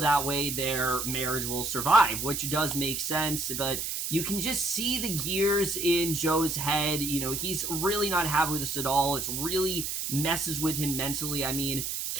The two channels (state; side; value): noise; right; hiss, 3 dB below the sound